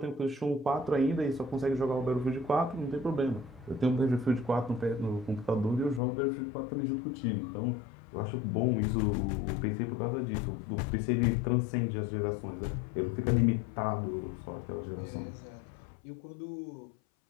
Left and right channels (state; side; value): drops out; right; at 6.0 s